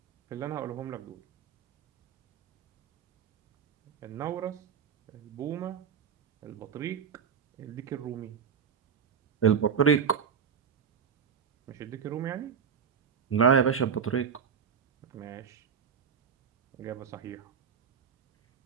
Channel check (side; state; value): left; quieter; 7.1 dB